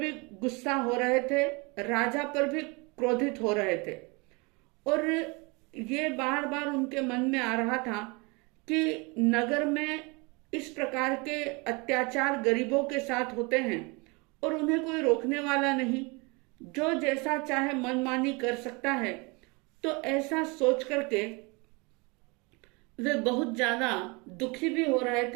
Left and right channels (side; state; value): left; quieter; 28.4 dB